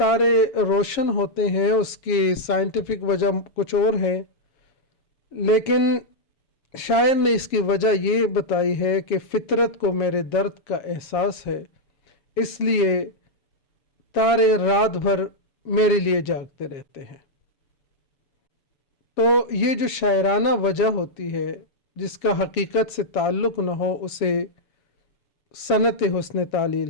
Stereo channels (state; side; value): late; right; 7.3 ms